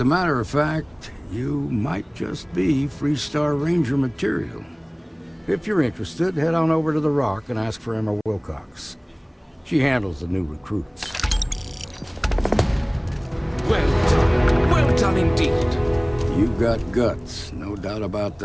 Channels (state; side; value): identical; both; correlation 1.00